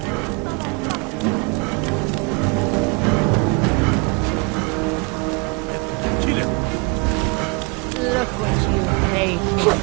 look what you made me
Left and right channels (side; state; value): left; quieter; 30.3 dB